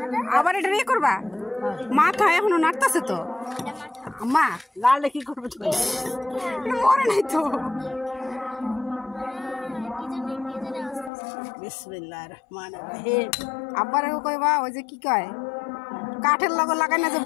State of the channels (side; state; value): right; drops out; at 11.1 s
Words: আবার এটা নিয়ে করবা মাথা এখনো নাড়তাছে তো মা লালে কি করবে তুমি মরে নাই তো বিসমিল্লাহির রহমানির রহিম আব্বারে কইবা ওই যে কি কয় কাঠের লগে লাগাই না যে